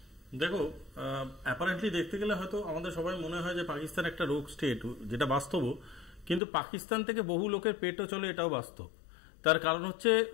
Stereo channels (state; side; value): drops out; right; at 6.4 s